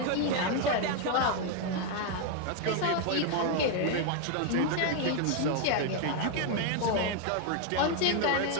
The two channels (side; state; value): both; different; correlation 0.01